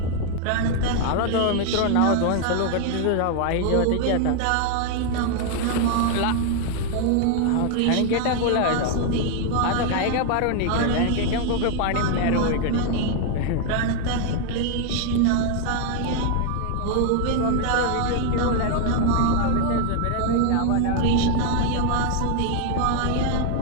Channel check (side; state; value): both; different; correlation 0.00